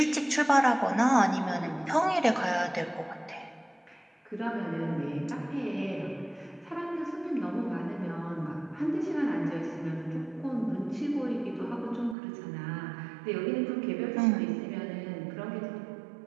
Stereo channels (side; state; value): left; drops out; at 12.2 s